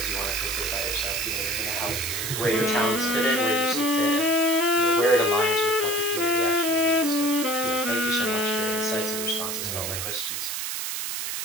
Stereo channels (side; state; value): right; noise; hiss, 3 dB below the sound